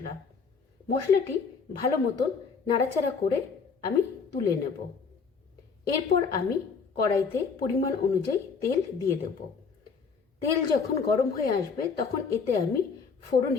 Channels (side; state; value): right; quieter; 5.4 dB